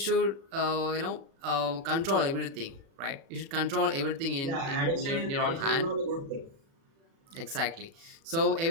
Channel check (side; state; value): left; late; 36 ms